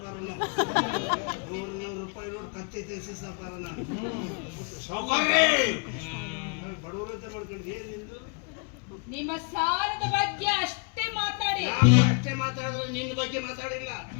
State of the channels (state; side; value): quieter; right; 36.0 dB